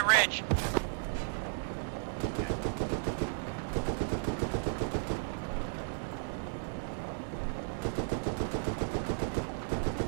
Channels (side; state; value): left; silent; 55 dB below the other